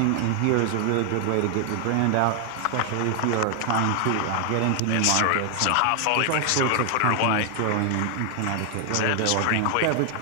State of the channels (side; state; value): both; different; correlation 0.00